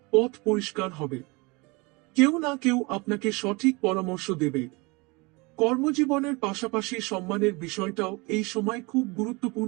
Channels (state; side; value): quieter; left; 26.4 dB